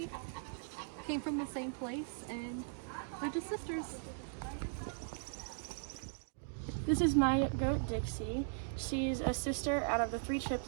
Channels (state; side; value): silent; left; digital silence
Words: came from the same place, and they're just sisters. This is my goat Dixie. She's a sister out of the 3